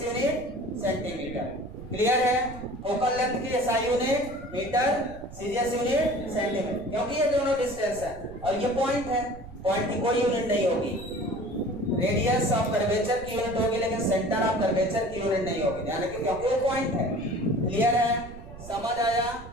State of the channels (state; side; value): noise; right; rumble, 15 dB below the sound